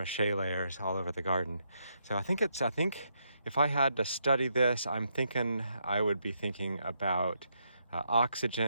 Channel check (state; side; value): inverted; both; correlation -0.79